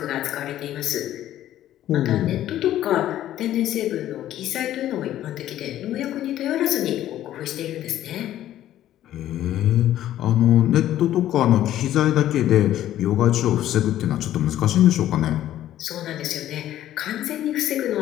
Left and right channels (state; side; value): quieter; right; 12.7 dB